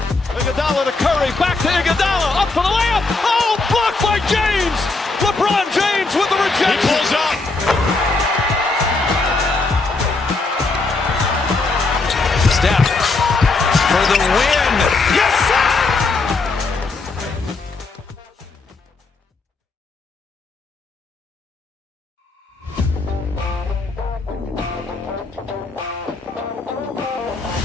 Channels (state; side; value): quieter; right; 3.7 dB